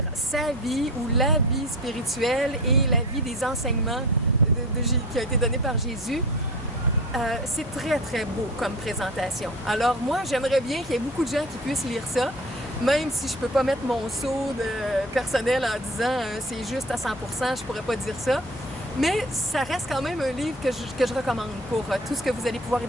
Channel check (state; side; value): normal; both; correlation 0.37